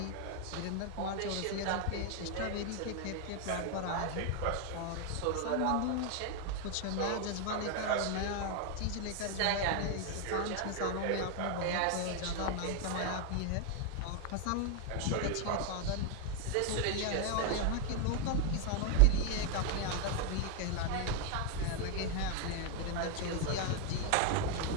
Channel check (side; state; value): both; different; correlation 0.01